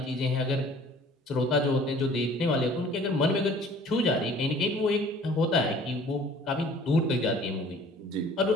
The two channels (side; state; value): both; normal; correlation 0.51